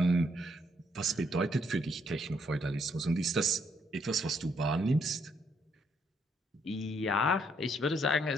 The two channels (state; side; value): normal; both; correlation 0.72